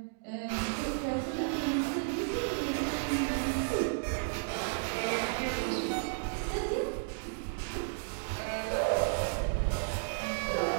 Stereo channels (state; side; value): silent; left; digital silence